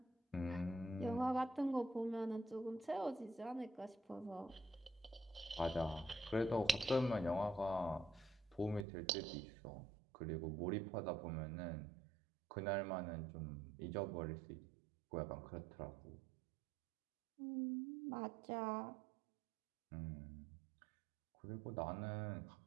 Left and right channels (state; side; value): drops out; left; at 8.8 s